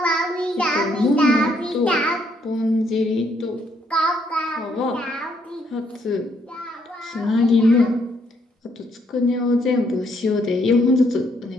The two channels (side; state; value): both; normal; correlation 0.71